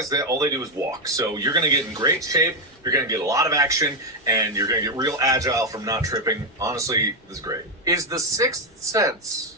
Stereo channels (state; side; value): normal; both; correlation 0.05